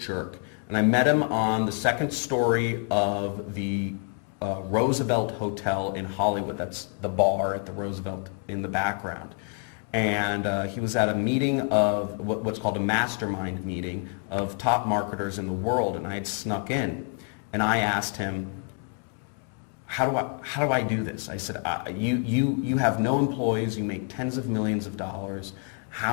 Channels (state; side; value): quieter; right; 39.5 dB